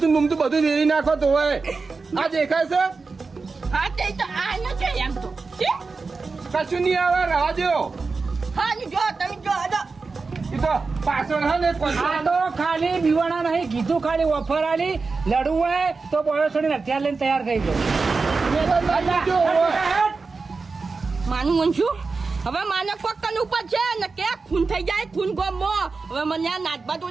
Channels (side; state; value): left; quieter; 4.3 dB